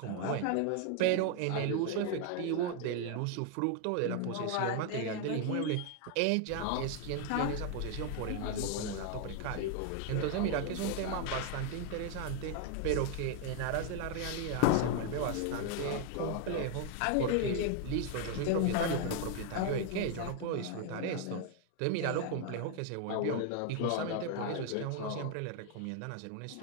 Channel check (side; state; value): both; different; correlation 0.01